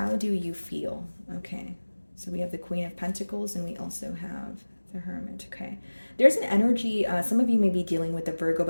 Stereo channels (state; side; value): inverted; both; correlation -1.00